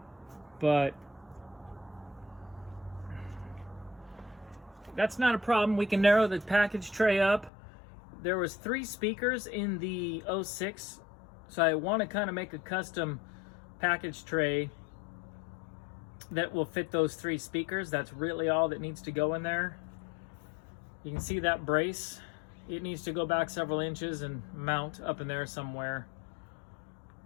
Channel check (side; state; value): right; drops out; at 7.5 s